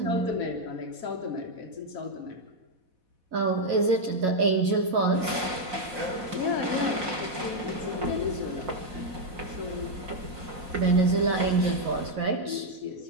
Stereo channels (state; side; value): late; left; 4.1 ms